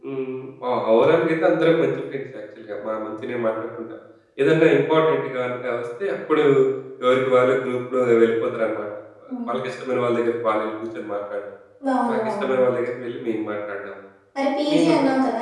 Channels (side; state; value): both; identical; correlation 1.00